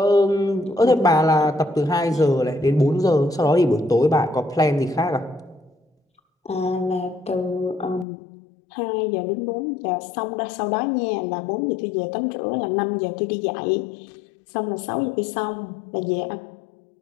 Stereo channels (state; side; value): drops out; right; at 8.1 s